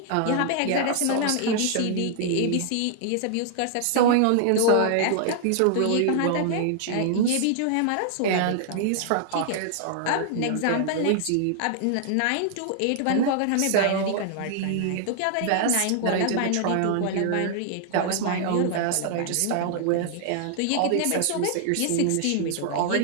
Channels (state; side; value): different; both; correlation -0.01